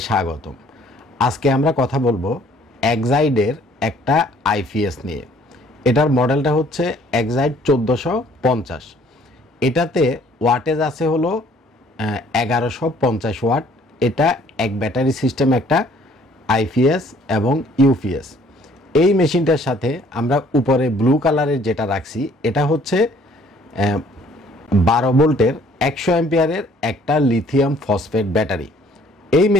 স্বাগতম। আজকে আমরা কথা বলবো এক্সাইডের একটা আইপিএস নিয়ে। এটার মডেলটা হচ্ছে এক্সাইড 1450। এটাতে ওয়াটেজ আছে হলো 1150 ওয়াট। এটা এক ব্যাটারি সিস্টেম একটা আইপিএস এবং ইউপিএস। এই মেশিনটার সাথে আমরা উপরে ব্লু কালারের যেটা রাখছি এটা হচ্ছে 12 ভোল্টের 100 অ্যাম্পিয়ারের একটা লিথিয়াম ফসফেট ব্যাটারি। এই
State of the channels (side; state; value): both; normal; correlation 0.59